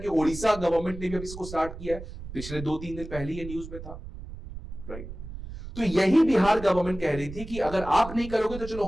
ओडिशा गवर्नमेंट ने भी अब इसको स्टार्ट किया है, पिछले 2-3 दिन पहले ये न्यूज में था, राइट। तो यही बिहार गवर्नमेंट कह रही थी कि अगर आप नहीं करोगे तो चलो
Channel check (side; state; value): right; noise; rumble, 11 dB below the sound